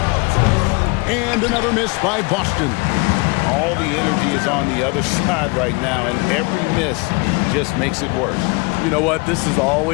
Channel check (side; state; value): right; quieter; 28.1 dB